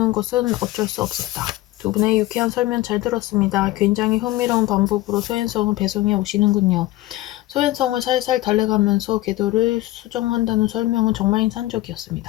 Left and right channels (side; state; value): right; quieter; 17.5 dB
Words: 것은 어쩔 수 없었다. 두 분의 유쾌한 설명 잘 들었습니다. 굉장히 흥미로운 방법으로 소행성을 배송해 오시는군요. 소행성을 살살 달래가면서 궤도를 수정한다는 설명은 정말